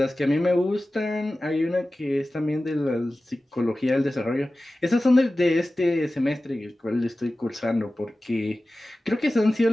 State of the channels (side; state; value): both; normal; correlation 0.96